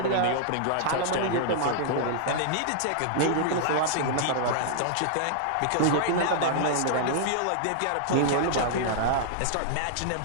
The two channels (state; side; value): different; both; correlation -0.01